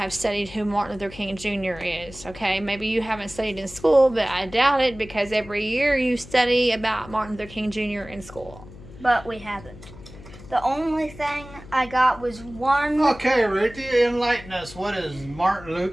studied who Martin Luther King Jr. is, okay? Maybe you haven't studied in school, but I doubt it because every year you study about Martin Luther King Jr. in school. But we haven't. The only thing I got was one... Okay, Ruthie, enlighten us. What is Martin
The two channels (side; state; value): left; noise; hum, 17 dB below the sound